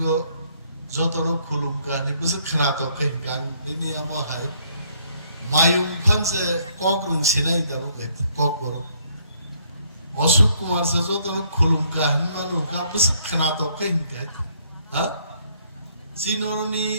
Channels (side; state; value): both; inverted; correlation -0.66